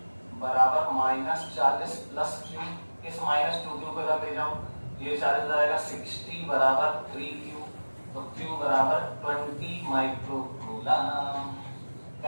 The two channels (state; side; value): inverted; both; correlation -1.00